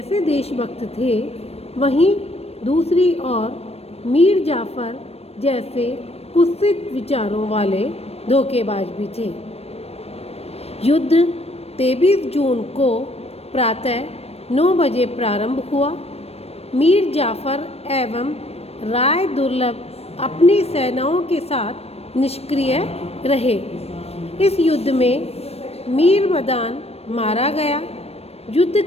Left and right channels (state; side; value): late; right; 0.29 ms